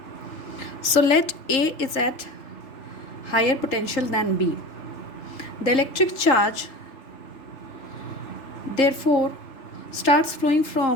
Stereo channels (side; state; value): right; late; 3.3 ms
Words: So let A is at higher potential than B. The electric charge therefore starts flowing